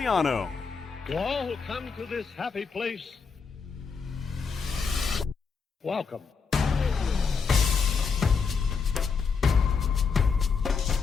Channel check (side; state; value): right; quieter; 5.5 dB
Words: To all who come to this happy place, welcome.